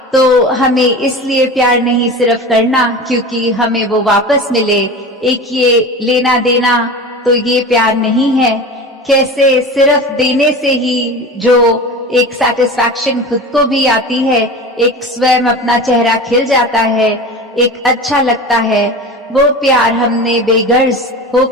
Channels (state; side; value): normal; both; correlation 0.32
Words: तो हमें इसलिए प्यार नहीं सिर्फ करना क्योंकि हमें वो वापस मिले, एक ये लेना देना तो ये प्यार नहीं है। कैसे सिर्फ देने से ही जो एक सेटिस्फैक्शन खुद को भी आती है, एक स्वयं अपना चेहरा खिल जाता है, एक अच्छा लगता है, वो प्यार हमने बेगर्ज